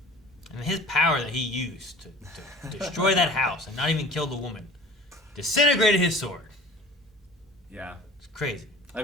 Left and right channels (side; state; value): both; normal; correlation 0.43